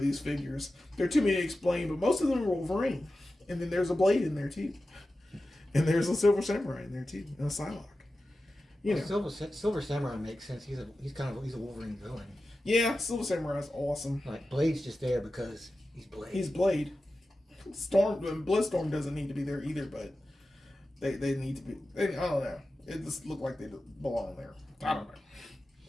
figures. There are too many to explain, but most of them are Wolverine. And then there's a Blade in there too. And there's a Silver Samurai in there too, and a Psylocke. Silver Samurai makes sense. He's a Wolverine villain. Yeah, Silver Samurai is awesome. Like Blade's just there because he's Blade. He's Blade. Bloodstorm doesn't need to be there either, but they need to be. I don't know. It just looked like they belong there. I don't know.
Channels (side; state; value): both; normal; correlation 0.93